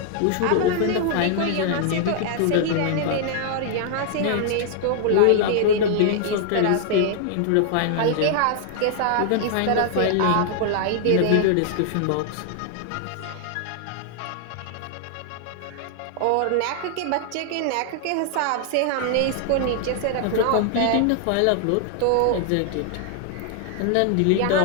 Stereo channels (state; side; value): different; both; correlation 0.00